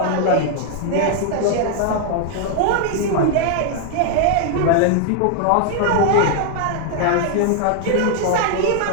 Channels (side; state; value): both; different; correlation 0.00